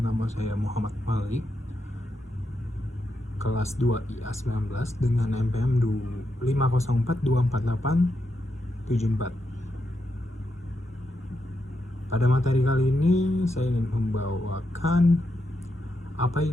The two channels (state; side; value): normal; both; correlation 0.84